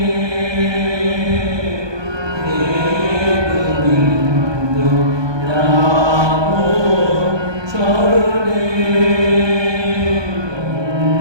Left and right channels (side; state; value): left; late; 1.2 ms